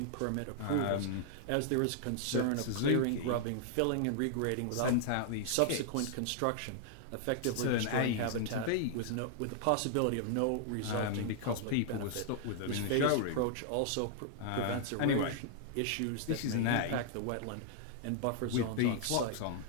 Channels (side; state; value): both; different; correlation -0.01